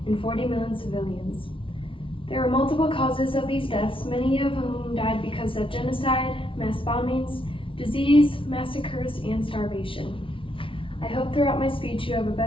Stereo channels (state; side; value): late; right; 0.25 ms